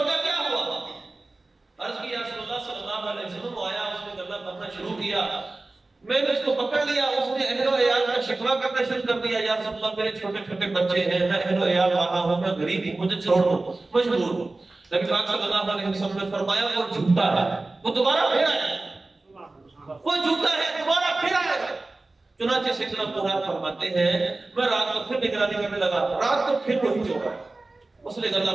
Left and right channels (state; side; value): quieter; left; 3.1 dB